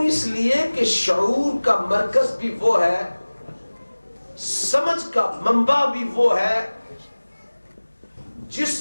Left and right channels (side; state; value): both; inverted; correlation -1.00